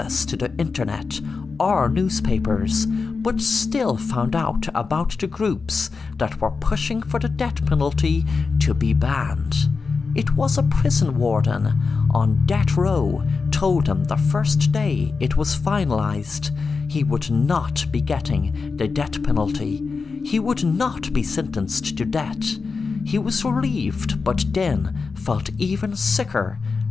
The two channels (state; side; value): quieter; right; 4.7 dB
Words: to the internet or newspapers, but still found out about the groups that were pushing for the death penalty to be banned. It was a prison warden on death row told him the first day it was finalized he would not be getting the death penalty. He would not be sentenced to death. He was relieved, but then felt even sicker,